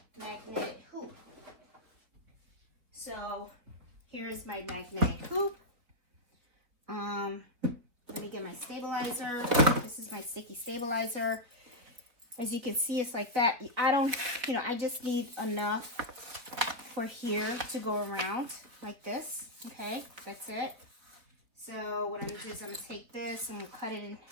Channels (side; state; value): left; late; 3.8 ms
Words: magnetic hoop. So here's my magnetic hoop. Let me get my stabilizer. This is my sticky stabilizer. As you can see, it's like that. I don't, you know, I just need enough for here to go around like this. Okay, that's it. So what I'm gonna do is I'm gonna take this and cut it in